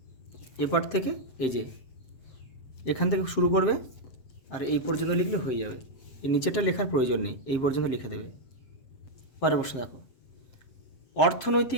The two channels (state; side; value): late; right; 7.6 ms